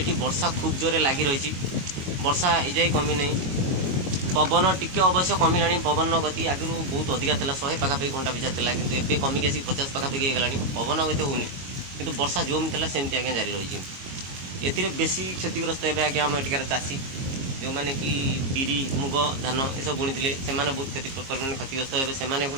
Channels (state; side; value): late; left; 22 ms